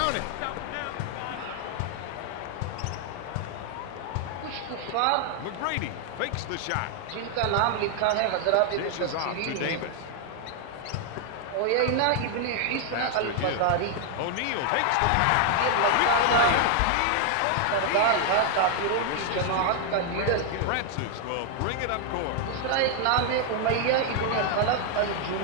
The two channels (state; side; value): different; both; correlation 0.00